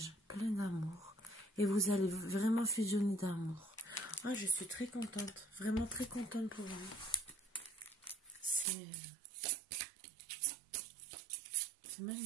plein d'amour. Et vous allez vraiment fusionner d'amour. Ah, je suis très contente. Vraiment très contente pour vous. C'est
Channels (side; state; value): left; drops out; at 8.7 s